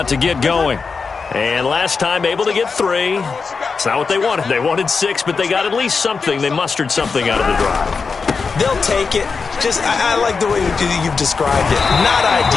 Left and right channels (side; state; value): right; quieter; 4.9 dB